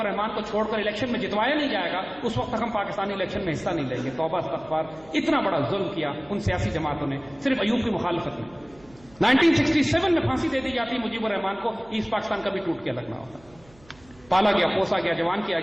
الرحمان کو چھوڑ کر الیکشن میں جتوایا نہیں جائے گا اس وقت تک ہم پاکستانی الیکشن میں حصہ نہیں لیں گے. توبہ استغفار، اتنا بڑا ظلم کیا ان سیاسی جماعتوں نے صرف ایوب کی مخالفت میں. 1967 میں پھانسی دے دی جاتی مجیب الرحمان کو، ایسٹ پاکستان کا بھی ٹوٹ کے لگنا ہوتا. پالا گیا، پوسا گیا، جوان کیا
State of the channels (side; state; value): right; noise; hum, 26 dB below the sound